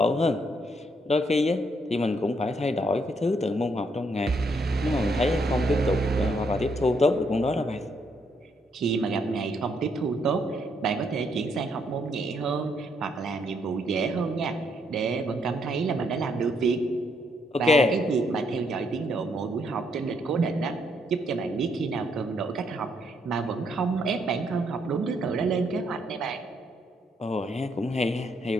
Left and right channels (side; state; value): both; normal; correlation 0.73